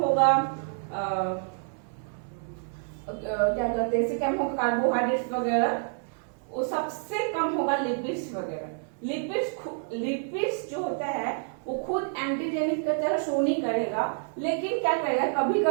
क्या कहते हैं इससे कम होगा कार्बोहाइड्रेट्स वगैरह, वो सबसे कम होगा लिपिड्स वगैरह। लिपिड्स जो होता है वो खुद एंटीजेनिक की तरह शो नहीं करेगा, लेकिन क्या करेगा कभी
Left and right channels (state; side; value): silent; left; 59 dB below the other